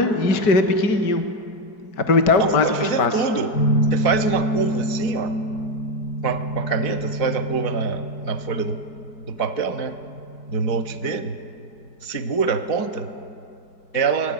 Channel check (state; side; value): late; right; 4.7 ms